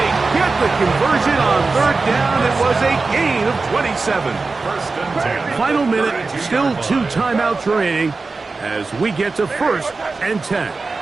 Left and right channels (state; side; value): quieter; left; 3.9 dB